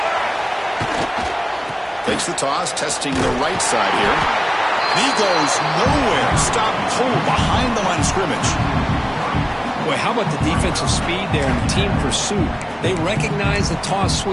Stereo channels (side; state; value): both; identical; correlation 1.00